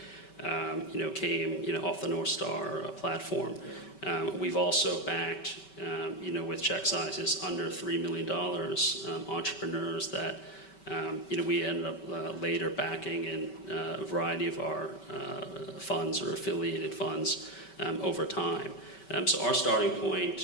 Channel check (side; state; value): right; late; 5.2 ms